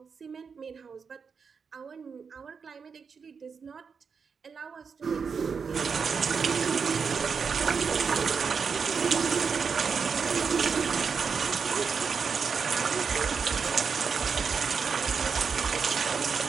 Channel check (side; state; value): left; quieter; 5.8 dB